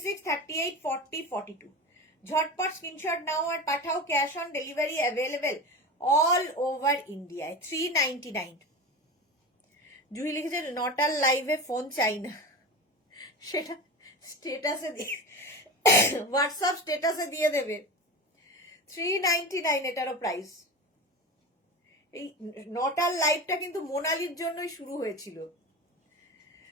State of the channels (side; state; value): both; normal; correlation 0.27